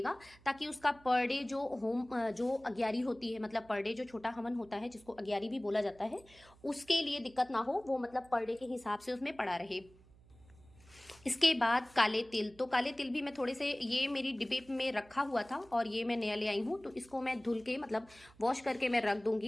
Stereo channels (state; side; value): noise; right; hum, 25 dB below the sound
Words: ताकि उसका पर डे जो जो अग्यारी होती है, मतलब पर डे जो छोटा हवन होता है जिसको अग्यारी भी बोला जाता है, उसके लिए दिक्कत ना हो, वो मतलब पर डे के हिसाब से उसमें पड़ा रहे। इसके बाद काले तिल, तो काले तिल भी मैं थोड़े से, ये मेरी डिब्बे में रखा हुआ था और ये मैं नया ले आई हूँ, तो इसको मैं धुल के मतलब वॉश करके मैं रख